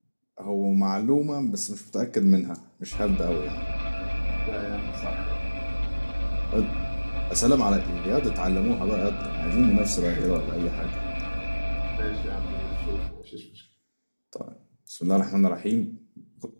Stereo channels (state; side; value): inverted; both; correlation -1.00